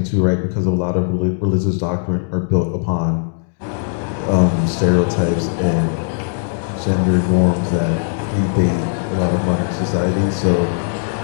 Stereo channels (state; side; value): silent; right; 67 dB below the other